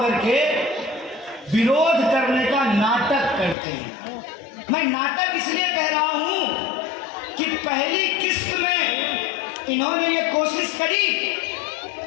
के विरोध करने का नाटक करते हैं। मैं नाटक इसलिए कह रहा हूं कि पहली किस्त में इन्होंने ये कोशिश करी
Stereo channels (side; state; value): right; drops out; at 3.6 s